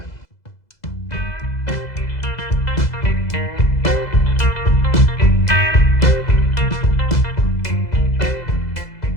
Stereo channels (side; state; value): right; late; 2.0 ms